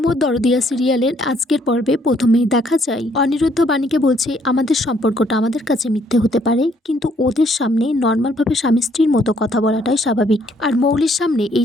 মোর দরদিয়া সিরিয়ালের আজকের পর্বে প্রথমেই দেখা যায় অনিরুদ্ধ বাণীকে বলছে আমাদের সম্পর্কটা আমাদের কাছে মিথ্যে হতে পারে, কিন্তু ওদের সামনে নর্মালভাবে স্বামী স্ত্রীর মতো কথা বলাটাই স্বাভাবিক, আর মৌলির সামনে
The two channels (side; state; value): both; normal; correlation 0.67